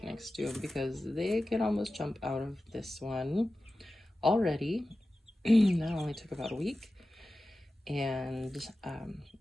next to them because they can almost jump out of this one already. That only took about a week. And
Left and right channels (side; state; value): both; normal; correlation 0.94